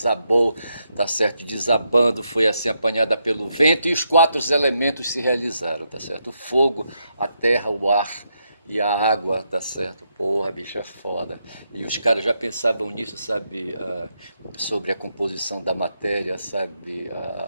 tá certo, desabando, foi assim apanhada pelo vento e os quatro elementos se realizaram, tá certo, o fogo, a terra, o ar e a água, tá certo, porra, bicho, é foda. E os caras já pensavam nisso, sabe, sobre a composição da matéria, sabe,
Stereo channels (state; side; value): inverted; both; correlation -0.81